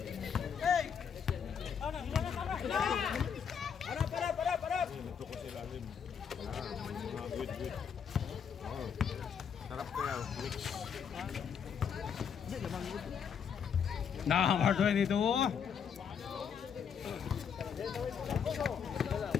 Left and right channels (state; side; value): quieter; right; 7.3 dB